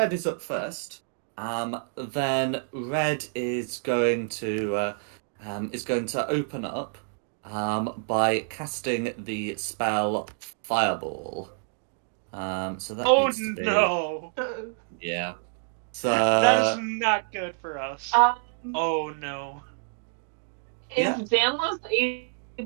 is up first, then red is going to open up, by casting the spell Fireball. So that Oh needs to be no! yeah. That is So not good for us. Oh no. Is yeah. Danlos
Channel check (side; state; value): left; silent; digital silence